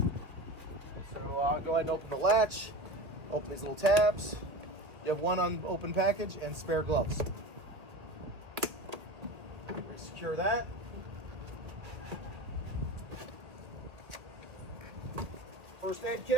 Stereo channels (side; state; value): left; late; 1.8 ms